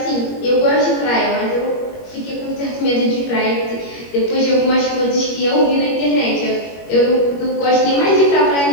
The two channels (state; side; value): late; right; 21 ms